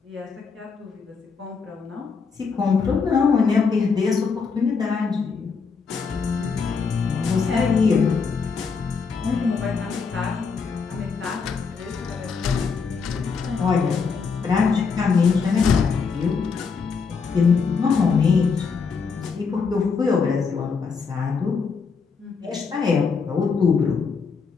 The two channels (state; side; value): quieter; right; 5.3 dB